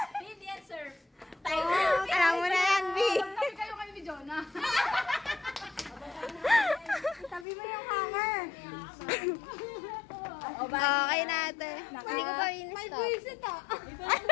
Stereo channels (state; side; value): drops out; right; at 7.5 s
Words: Hindi yan, sir. Alam mo na yan, B. Tabi kayo kayo ni Jonah. Tabi mo yung hanger. Okay natin. Hindi ko pa May buwisit ah.